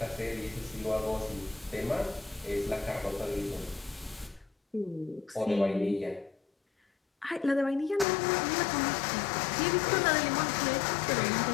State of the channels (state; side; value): drops out; right; at 8.1 s